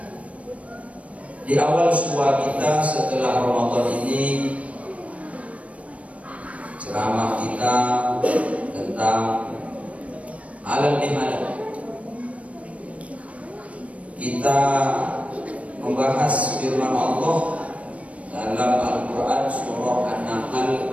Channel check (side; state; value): left; late; 0.065 ms